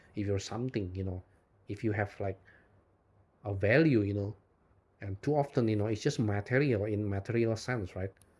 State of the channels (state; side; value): identical; both; correlation 1.00